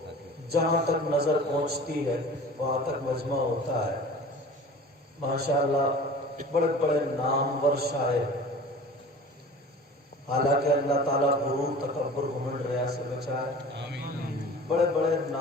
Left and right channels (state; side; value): normal; both; correlation 0.41